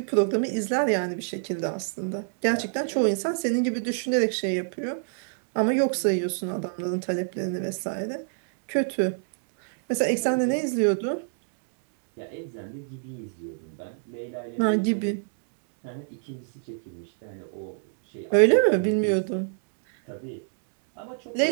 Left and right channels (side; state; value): left; silent; digital silence